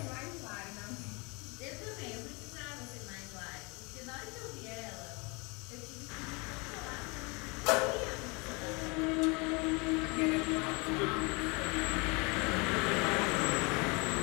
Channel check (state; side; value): quieter; right; 29.2 dB